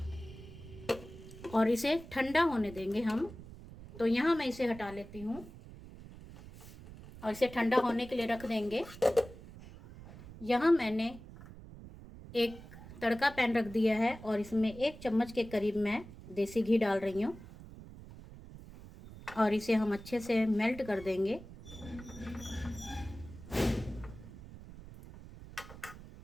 और इसे ठंडा होने देंगे हम। तो यहाँ मैं इसे हटा लेती हूँ और इसे ठंडा होने के लिए रख देंगे। यहाँ मैंने एक तड़का पैन रख दिया है और इसमें 1 चम्मच के करीब मैं देसी घी डाल रही हूँ, और इसे हम अच्छे से मेल्ट कर देंगे।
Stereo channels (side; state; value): right; noise; rumble, 16 dB below the sound